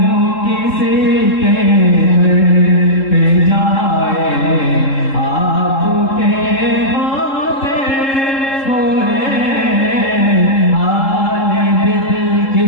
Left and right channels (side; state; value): right; late; 3.7 ms